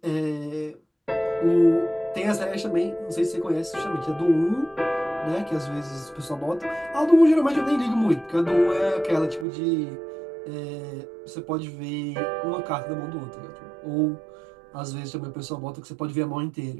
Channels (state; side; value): drops out; left; at 9.5 s